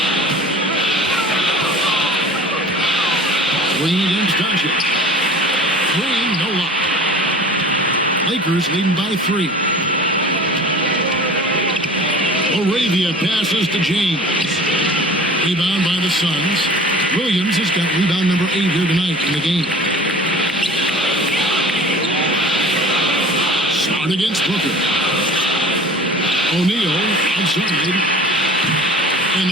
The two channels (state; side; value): normal; both; correlation 0.42